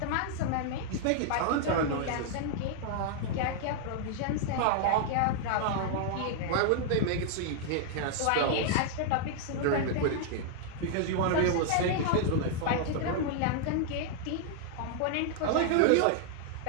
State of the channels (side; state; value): both; different; correlation -0.01